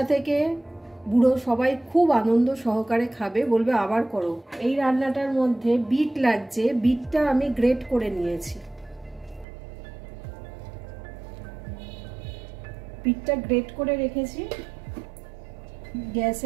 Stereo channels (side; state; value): left; drops out; at 9.5 s